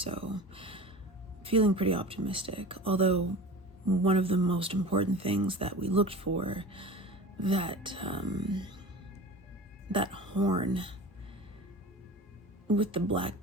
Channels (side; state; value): both; normal; correlation 0.35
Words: feeling pretty optimistic, although one of the most important things that we looked for, that horn with the black